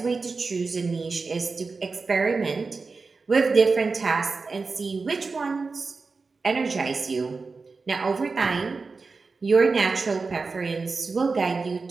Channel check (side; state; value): left; quieter; 4.2 dB